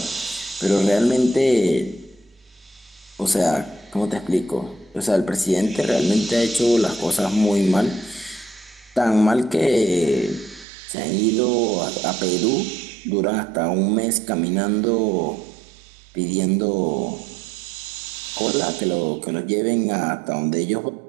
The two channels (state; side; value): drops out; left; at 10.7 s